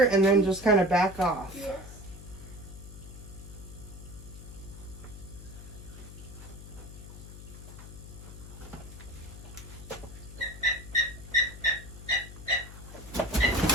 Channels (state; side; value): noise; left; hum, 14 dB below the sound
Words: and then just kind of back off. Yes.